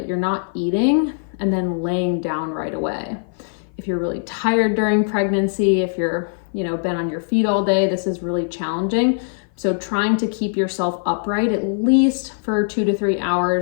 you're not eating and then laying down right away. If you're really tired during pregnancy, if you're been on your feet all day, this is really challenging. So trying to keep yourself upright at least for 2 to 3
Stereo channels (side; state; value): right; silent; 56 dB below the other